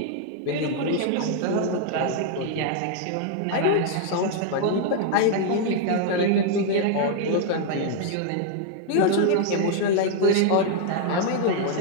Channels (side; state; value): both; different; correlation 0.00